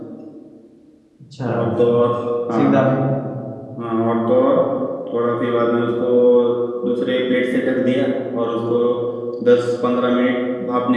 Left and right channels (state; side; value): identical; both; correlation 1.00